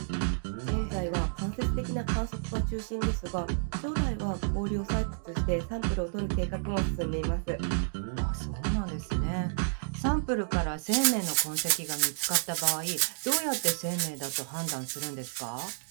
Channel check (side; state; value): left; silent; digital silence